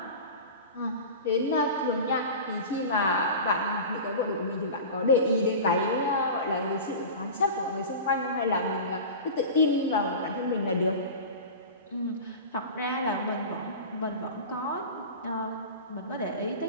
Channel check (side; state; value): both; inverted; correlation -0.32